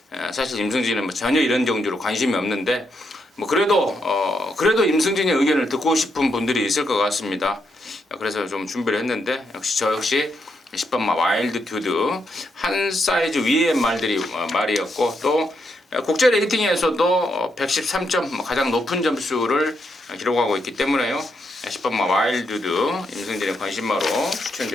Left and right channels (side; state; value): both; normal; correlation 0.80